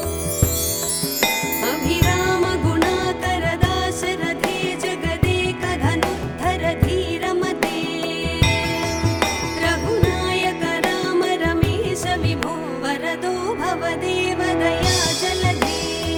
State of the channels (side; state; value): both; identical; correlation 1.00